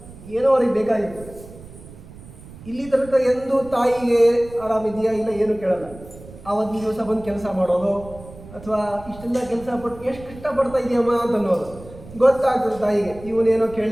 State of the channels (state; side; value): noise; right; rumble, 18 dB below the sound